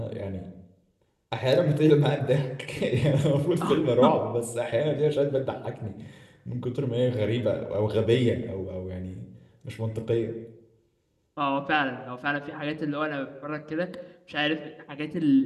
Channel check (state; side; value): identical; both; correlation 1.00